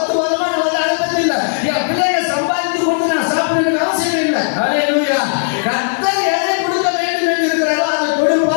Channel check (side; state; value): right; silent; digital silence